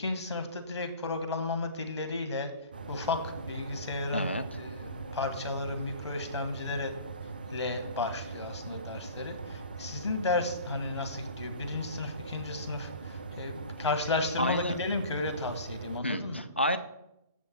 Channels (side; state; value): both; inverted; correlation -0.44